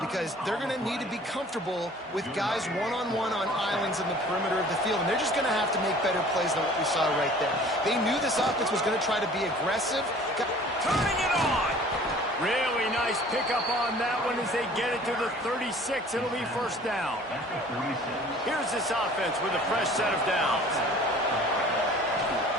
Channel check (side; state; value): both; normal; correlation 0.49